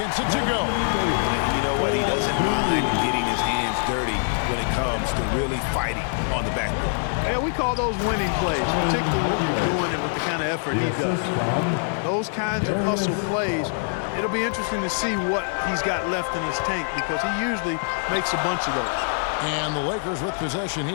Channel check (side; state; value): right; silent; digital silence